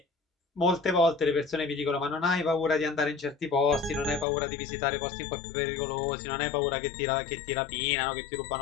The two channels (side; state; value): right; drops out; at 4.2 s